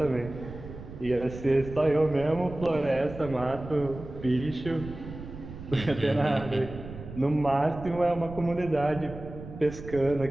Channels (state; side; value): noise; right; rumble, 12 dB below the sound